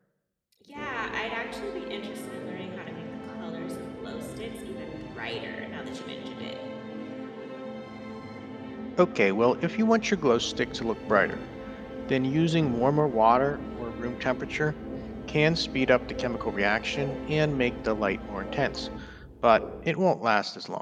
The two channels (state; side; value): identical; both; correlation 1.00